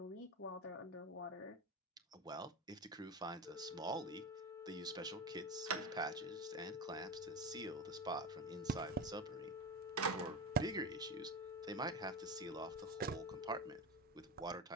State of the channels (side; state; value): both; normal; correlation 0.22